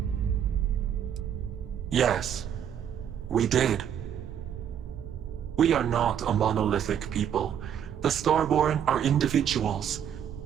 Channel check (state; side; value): quieter; left; 9.1 dB